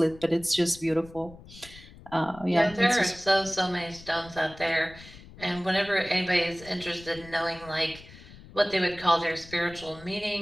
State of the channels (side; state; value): left; noise; rumble, 19 dB below the sound